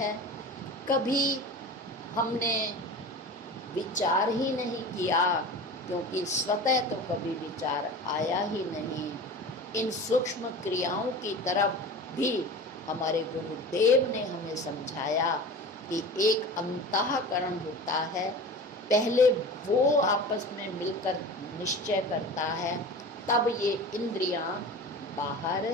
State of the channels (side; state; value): both; normal; correlation 0.35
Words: कभी हमने विचार ही नहीं किया क्योंकि स्वतः तो कभी विचार आया ही नहीं। इन सूक्ष्म क्रियाओं की तरफ भी हमारे गुरुदेव ने हमें समझाया कि एक अंतःकरण होता है, पहले वो आपस में मिलकर निश्चय करता है, तब ये इंद्रियां बाहर